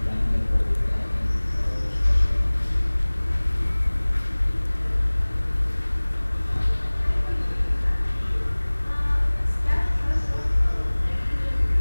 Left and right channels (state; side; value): inverted; both; correlation -1.00